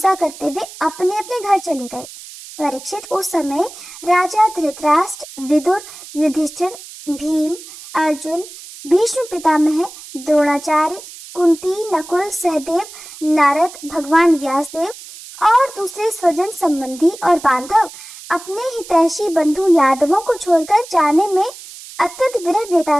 करते हुए अपने अपने घर चले गए। परीक्षित, उस समय राजा धृतराष्ट्र, विदुर, युधिष्ठिर, भीम, अर्जुन, भीष्म पितामह, द्रोणाचार्य, कुंती, नकुल, सहदेव, नारद, भगवान व्यासदेव और दूसरे स्वजन संबंधी और बांधव अपने हितैषी बंधु यादवों को छोड़कर जाने में अत्यंत विरह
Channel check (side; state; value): right; noise; hiss, 16 dB below the sound